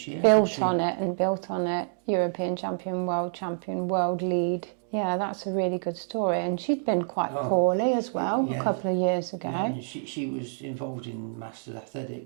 year. Built on it. European champion, world lead. Yeah, that's a really good story. And she'd been quite poorly as well a couple of years ago. Yeah, she was involved in Masters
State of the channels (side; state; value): left; silent; digital silence